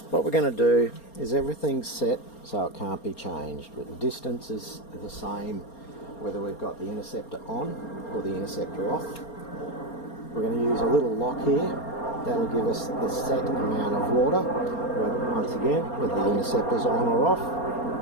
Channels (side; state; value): right; late; 4.3 ms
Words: what we're going to do is everything's set so it can't be changed, but the distance is the same whether we've got the Interceptor on or the Interceptor off. We're going to use a little lock here. That'll give us the set amount of water, once again, whether the Interceptor's on or off.